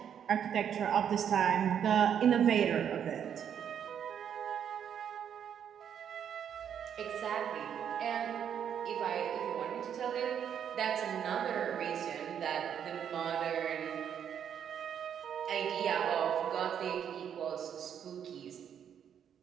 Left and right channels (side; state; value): left; quieter; 8.6 dB